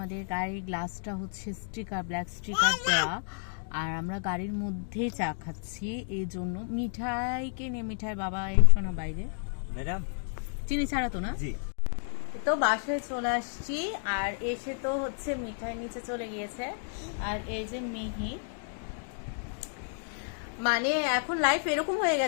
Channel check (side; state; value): right; silent; digital silence